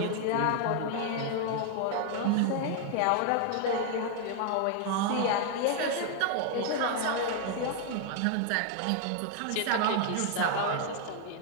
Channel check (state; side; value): different; both; correlation 0.00